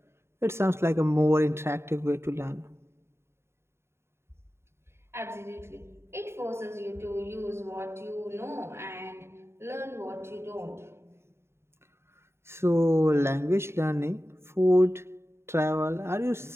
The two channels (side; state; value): left; late; 0.12 ms